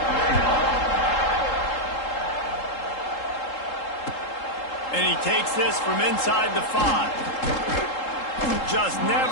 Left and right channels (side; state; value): right; late; 3.7 ms